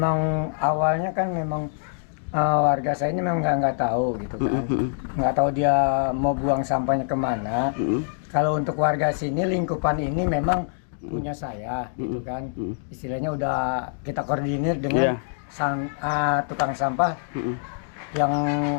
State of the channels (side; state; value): right; silent; digital silence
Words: awalnya kan memang warga saya ini memang nggak tahu gitu kan. Nggak tahu dia mau buang sampahnya kemana. Kalau untuk warga sini lingkupan ini memang punya saya gitu kan. Istilahnya udah kita koordinir dengan tukang sampah yang